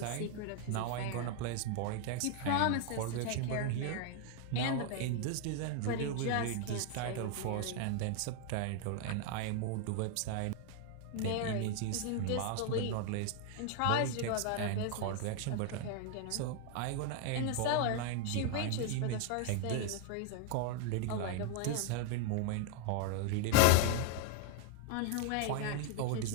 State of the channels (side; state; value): both; different; correlation 0.00